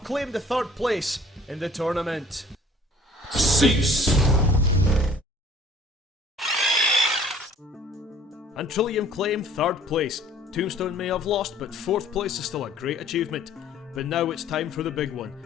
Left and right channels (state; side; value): normal; both; correlation 0.53